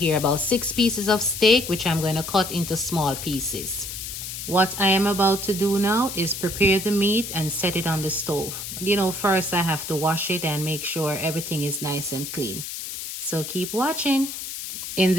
about 6 pieces of steak, which I'm going to cut into small pieces. What I am about to do now is prepare the meat and set it on the stove. First I have to wash it and make sure everything is nice and clean. So keep watching. In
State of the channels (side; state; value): left; noise; hiss, 7 dB below the sound